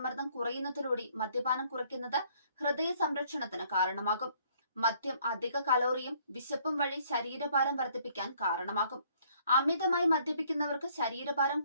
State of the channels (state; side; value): inverted; both; correlation -0.63